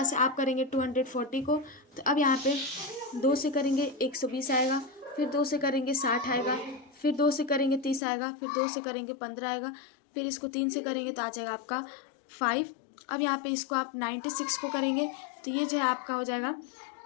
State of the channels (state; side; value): drops out; right; at 8.0 s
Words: से आप करेंगे 240 को। तो अब यहाँ पे 2 से करेंगे 120 आएगा, फिर 2 से करेंगे 60 आएगा, फिर 2 से करेंगे 30 आएगा, फिर 2 से करेंगे 15 आएगा, फिर इसको 3 से करेंगे तो आ जाएगा आपका 5। अब यहाँ पे इसको आप 96 को करेंगे तो ये जो है आपका हो जाएगा